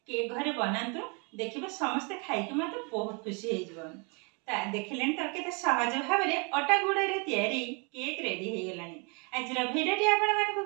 केक घरे बनांतु। देखिबे समस्त खाइके मत बहुत खुशी हे जबन। ता देखिलेन तो केते सहज भाव रे अटा गुड़ा रे तयारी केक रेडी हे गलानी। आज भिडियोटी आपण मानकु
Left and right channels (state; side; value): quieter; left; 32.8 dB